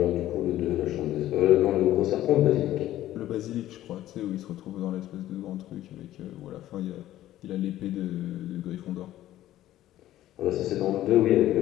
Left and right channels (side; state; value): right; quieter; 13.8 dB